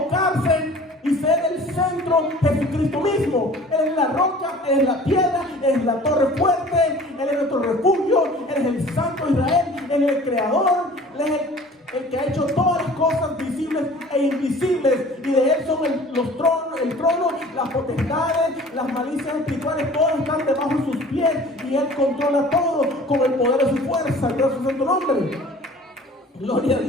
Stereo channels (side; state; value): both; normal; correlation 0.46